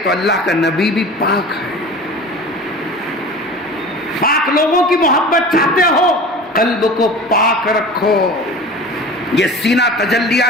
تو اللہ کا نبی بھی پاک ہے. پاک لوگوں کی محبت چاہتے ہو، قلب کو پاک رکھو. یہ سینہ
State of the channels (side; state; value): both; normal; correlation 0.37